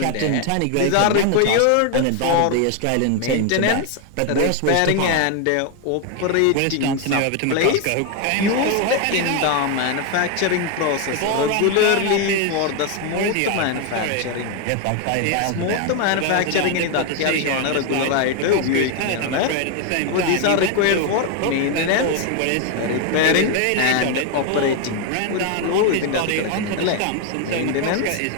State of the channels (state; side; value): different; both; correlation 0.01